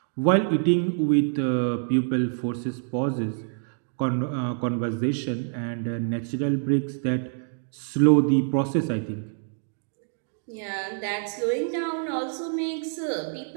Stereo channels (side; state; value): left; silent; 61 dB below the other